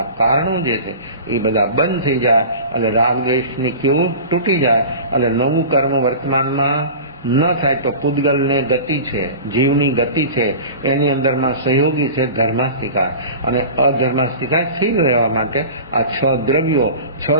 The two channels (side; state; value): both; inverted; correlation -0.36